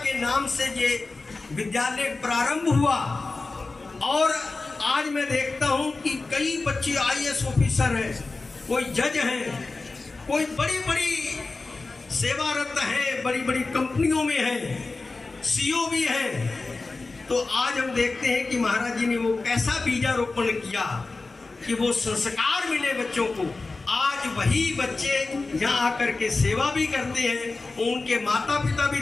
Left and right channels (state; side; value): quieter; right; 3.6 dB